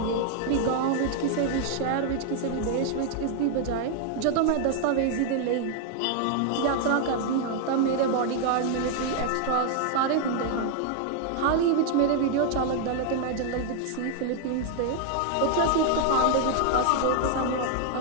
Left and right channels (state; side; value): different; both; correlation 0.00